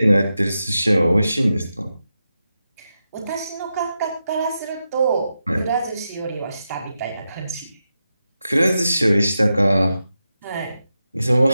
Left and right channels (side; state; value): both; inverted; correlation -0.89